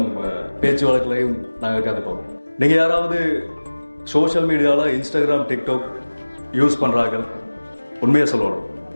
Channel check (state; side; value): inverted; both; correlation -1.00